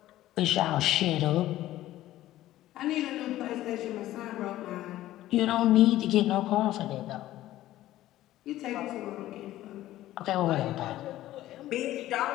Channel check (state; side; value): quieter; right; 14.6 dB